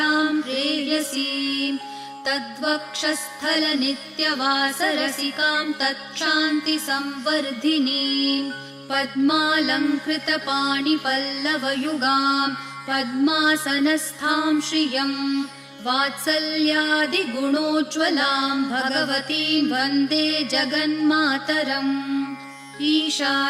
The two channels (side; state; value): both; identical; correlation 1.00